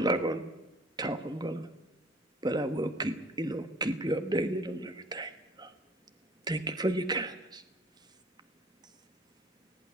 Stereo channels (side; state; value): both; normal; correlation 0.51